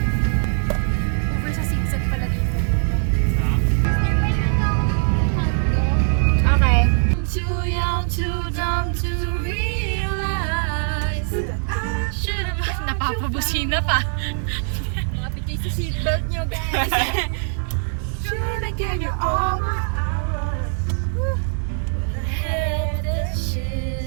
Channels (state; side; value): silent; left; 63 dB below the other